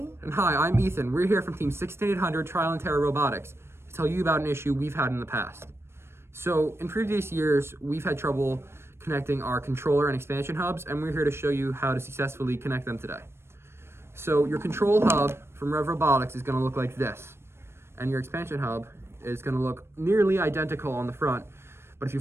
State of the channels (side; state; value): left; late; 0.12 ms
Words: And hi, I'm Ethan. We're here from Team 16800 Trial and Terror Robotics to tell you about an issue we've had in the past. So, in previous years, we've had trouble connecting our controller and expansion hubs, and we're here to show you how to successfully connect them today. So, your control hub from Rev Robotics is going to look like this, and your expansion hub is going to look nearly identical on the front, but if